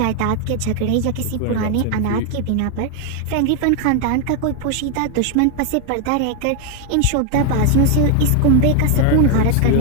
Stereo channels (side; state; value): both; different; correlation 0.01